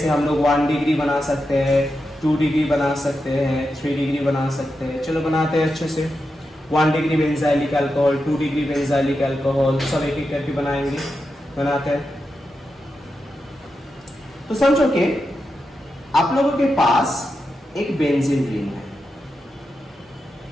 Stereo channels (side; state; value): both; normal; correlation 0.88